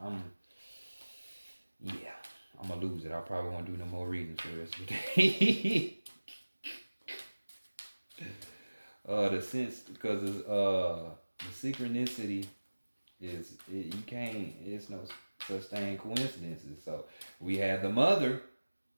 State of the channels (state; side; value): inverted; both; correlation -1.00